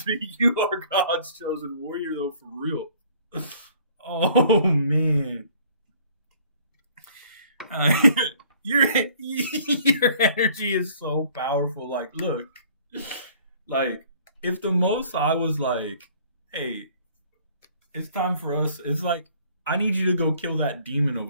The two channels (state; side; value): inverted; both; correlation -0.56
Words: you are God's chosen warrior, though, for real. Oh, man. Your energy is so powerful. Like, look, like if the Most High was like, "Hey, It's time for us. It's like, I need you to go kill that demon